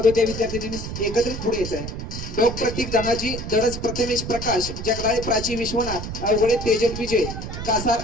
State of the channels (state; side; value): noise; right; rumble, 7 dB below the sound